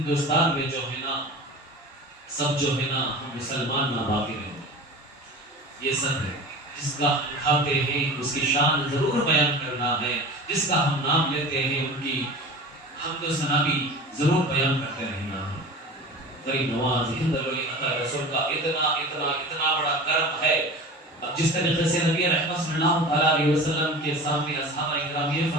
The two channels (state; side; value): normal; both; correlation 0.36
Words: میں جو ہے نا سب جو ہے نا ہم مسلمان نہ باقی رہے. یہ سب ہے جس کا ہم کھاتے ہیں اس کی شان ضرور بیان کرنا ہے، جس کا ہم نام لیتے ہیں ان کی حمد و ثنا بھی ضرور بیان کرتے رہنا ہے. فرید نواز ہند الولی عطا رسول کا اتنا بڑا کرم ہے. اب جس طریقے سے نبی رحمت صلی اللہ علیہ وسلم کے سامنے اصحاب اکرام یہ